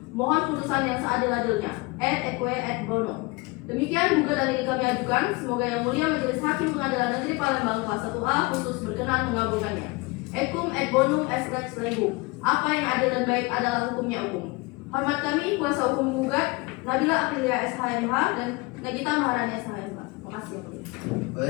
mohon putusan yang seadil-adilnya. Et eque et bono. Demikian gugatan ini kami ajukan. Semoga Yang Mulia Majelis Hakim Pengadilan Negeri Palembang kelas 1A khusus berkenan mengabulkannya. Ecum et bonum est lex legum. Apa yang adil dan baik adalah hukumnya umum. Hormat kami kuasa hukum penggugat Nabila Aprilia SHMH dan Nagita Maharani SHMH. Terima kasih Yang Mulia.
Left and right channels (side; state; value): right; quieter; 25.1 dB